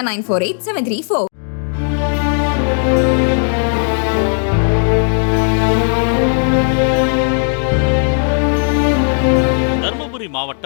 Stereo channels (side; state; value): right; silent; 69 dB below the other